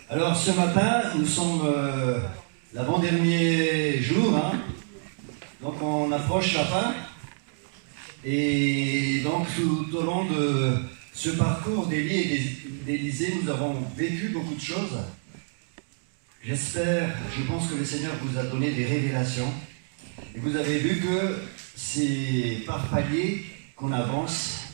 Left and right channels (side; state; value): left; silent; digital silence